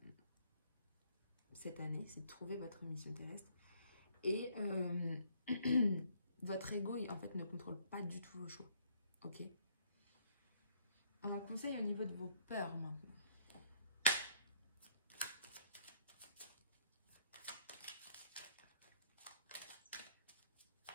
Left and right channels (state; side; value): inverted; both; correlation -0.65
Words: cette année, c'est de trouver votre mission terrestre. Et votre ego, en fait, ne contrôle pas du tout vos choix. Ok? Un conseil au niveau de vos peurs maintenant.